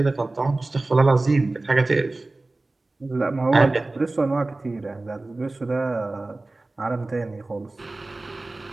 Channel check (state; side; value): quieter; left; 3.0 dB